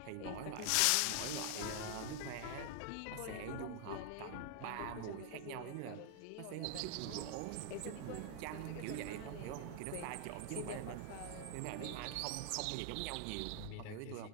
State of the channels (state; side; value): different; both; correlation 0.00